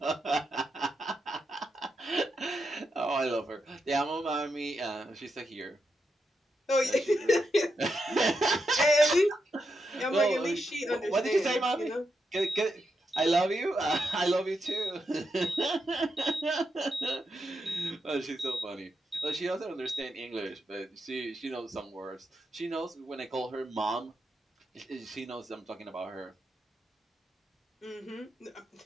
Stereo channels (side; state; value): both; normal; correlation 0.85